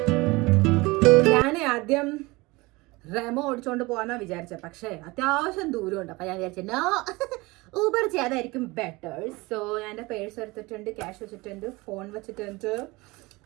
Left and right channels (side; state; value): left; quieter; 23.0 dB